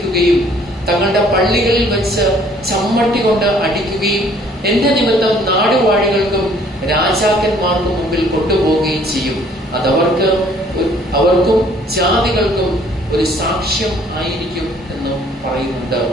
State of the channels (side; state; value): both; normal; correlation 0.59